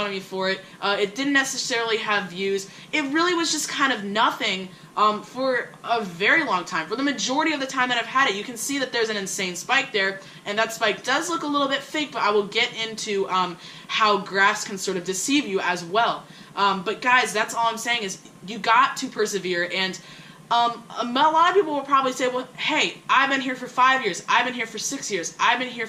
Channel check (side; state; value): both; identical; correlation 1.00